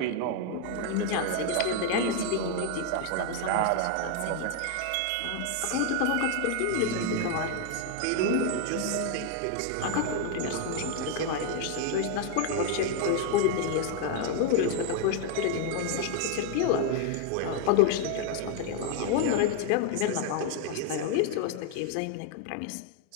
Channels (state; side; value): different; both; correlation 0.00